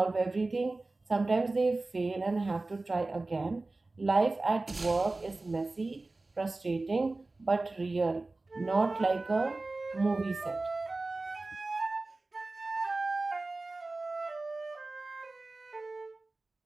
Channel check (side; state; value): left; quieter; 3.2 dB